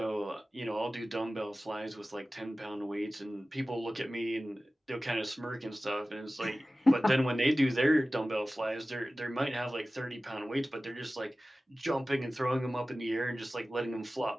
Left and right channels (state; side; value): normal; both; correlation 0.96